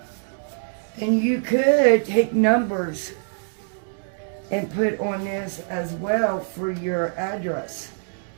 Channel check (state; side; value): silent; left; digital silence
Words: And you could take numbers and put on this as well for your address.